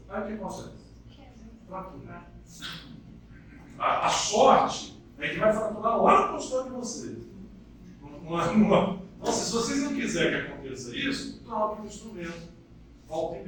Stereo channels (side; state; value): both; identical; correlation 1.00